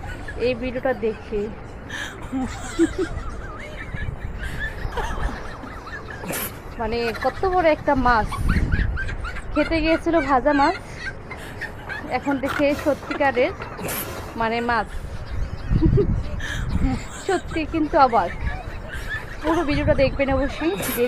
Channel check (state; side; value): identical; both; correlation 1.00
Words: এই ভিডিওটা দেখে। মানে কত বড় একটা মাছ খেতে গিয়েছিল, ভাজা মাছ, এখন দেখে সত্যিকারের মানে মাছ। সত্যি কিন্তু অবাক। পুরো ভিডিওটা দেখবেন অবশ্যই,